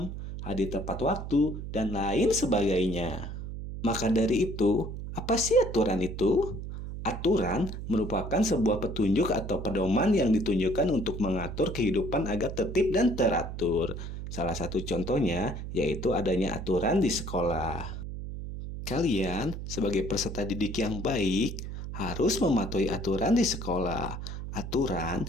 hadir tepat waktu, dan lain sebagainya. Maka dari itu, apa sih aturan itu? Aturan merupakan sebuah petunjuk atau pedoman yang ditunjukkan untuk mengatur kehidupan agar tertib dan teratur. Salah satu contohnya yaitu adanya aturan di sekolah. Kalian sebagai peserta didik yang baik harus mematuhi aturan di sekolah.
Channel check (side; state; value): right; noise; hum, 7 dB below the sound